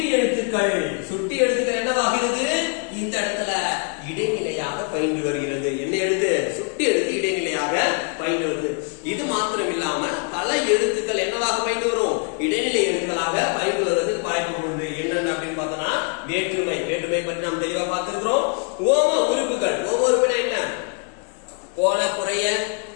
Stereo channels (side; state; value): right; quieter; 39.7 dB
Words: எழுத்துக்கள். சுட்டி எழுத்துக்கள் என்னவாகிறது? இந்த இடத்துல இடைநிலையாக பயின்று வருகிறது. என்ன எழுத்து? சுட்டி எழுத்து இடைநிலையாக பயின்று வருது. இது மாத்திரம் இல்லாம பல எழுத்துக்கள் என்னவாக பயின்று வரும்? இடைநிலை எழுத்துக்களாக பயின்று வருவதற்கு வாய்ப்பு உண்டு. என்னென்ன அப்படின்னு பார்த்தோம்னா வேற்றுமை. வேற்றுமை பற்றி நாம் தெளிவா பார்த்திருக்கிறோம். ஓம உறுப்புகள். ஓம உறுப்புனா என்ன? போல, குறைய,